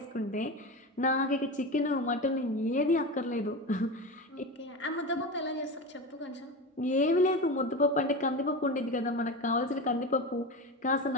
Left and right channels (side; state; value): both; normal; correlation 0.24